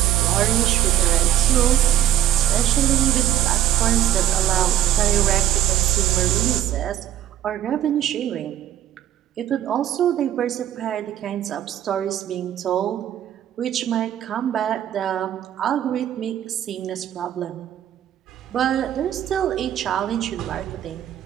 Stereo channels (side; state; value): left; quieter; 11.7 dB